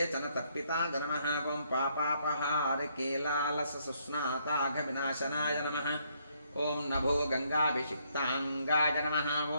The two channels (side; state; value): both; inverted; correlation -0.71